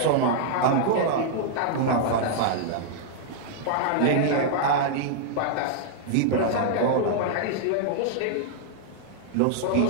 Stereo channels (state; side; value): different; both; correlation -0.01